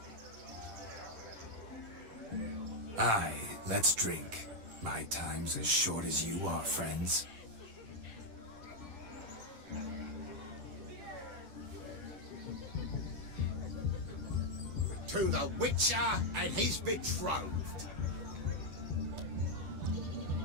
Aye, let's drink. My time's as short as you are, friends. To the Witcher and his betrothed.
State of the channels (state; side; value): late; left; 9.8 ms